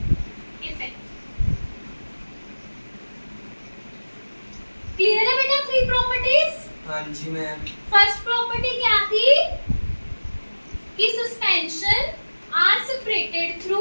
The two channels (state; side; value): inverted; both; correlation -1.00